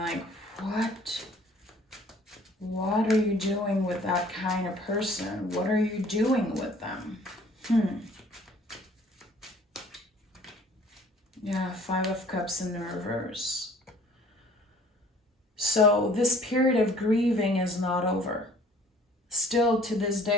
what? What are you doing with that kind of person? What are you doing with them? Yeah, Five of Cups in the reverse. So this period of grieving is not over. Still to this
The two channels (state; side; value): normal; both; correlation 0.53